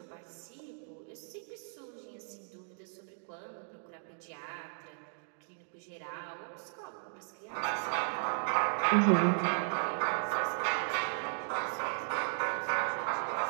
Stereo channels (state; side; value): silent; left; digital silence